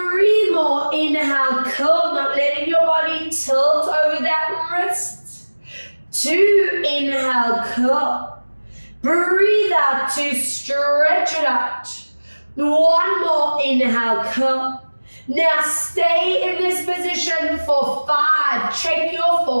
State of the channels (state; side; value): inverted; both; correlation -1.00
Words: more, inhale, curl, not letting your body tilt over that wrist. 2, inhale, curl. Breathe out to stretch it out. 1 more, inhale, curl. Now stay in this position for 5, check your